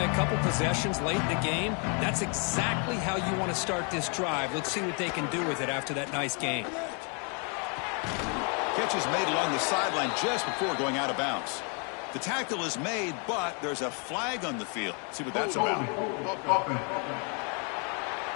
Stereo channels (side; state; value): right; quieter; 36.9 dB